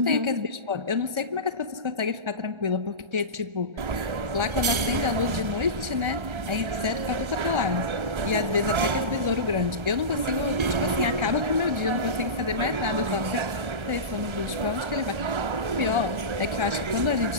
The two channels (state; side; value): late; left; 1.3 ms